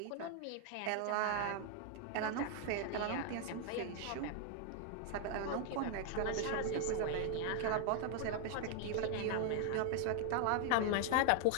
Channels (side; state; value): both; different; correlation 0.00